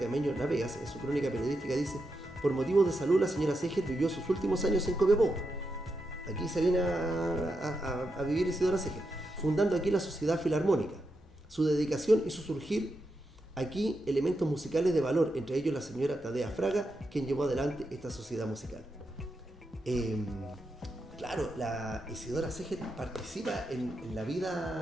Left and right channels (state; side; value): normal; both; correlation 0.85